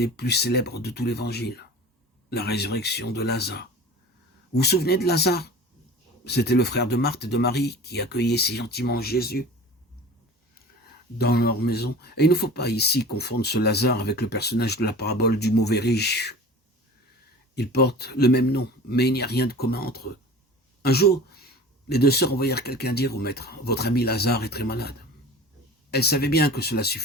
plus célèbres de tout l'Évangile, la résurrection de Lazare. Vous vous souvenez de Lazare? C'était le frère de Marthe et de Marie qui accueillait si gentiment Jésus dans leur maison. Et il ne faut pas ici confondre ce Lazare avec le personnage de la parabole du mauvais riche. Ils portent le même nom, mais il n'y a rien de commun entre eux. Un jour, les deux sœurs envoyèrent quelqu'un dire au maître, « Votre ami Lazare est très malade. » Elles savaient bien que cela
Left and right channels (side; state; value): both; normal; correlation 0.39